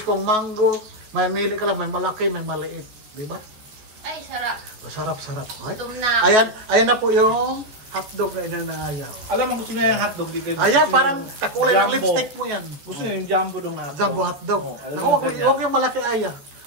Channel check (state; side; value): late; left; 14 ms